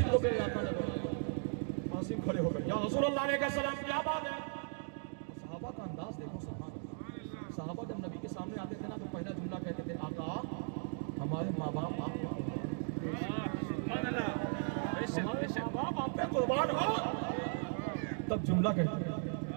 को मेरे आका ने बुलाया। आसिम खड़े हो गए, या रसूलल्लाह अलैहि सलाम, क्या बात है? सहाबा का अंदाज देखो, सहाबा जब नबी के सामने आते थे ना, तो पहला जुमला कहते थे, आका हमारे माँ बाप आप पे कुर्बान हो। तब जुमला कहते हैं,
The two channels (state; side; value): silent; left; 53 dB below the other